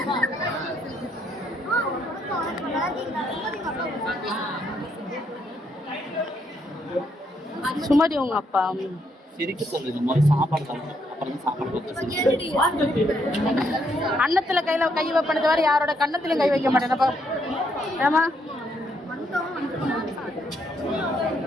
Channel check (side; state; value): both; normal; correlation 0.74